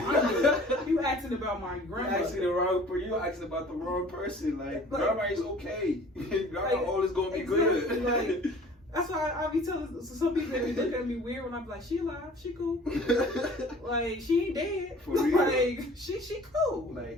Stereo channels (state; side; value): normal; both; correlation 0.48